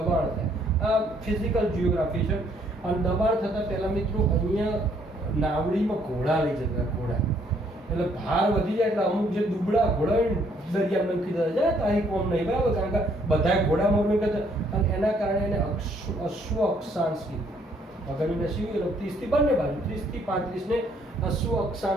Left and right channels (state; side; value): normal; both; correlation 0.66